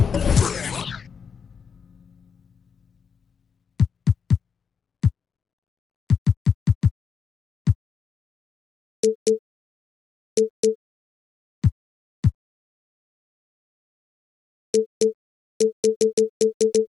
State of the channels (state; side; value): quieter; right; 6.4 dB